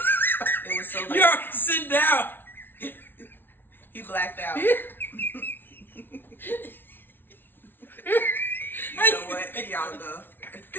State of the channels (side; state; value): right; late; 0.10 ms